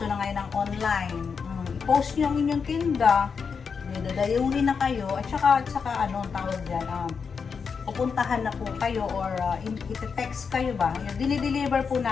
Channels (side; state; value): right; quieter; 5.8 dB